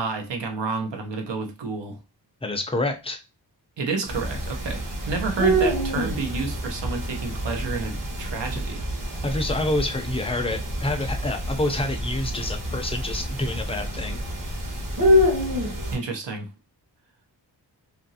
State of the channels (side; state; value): both; normal; correlation 0.18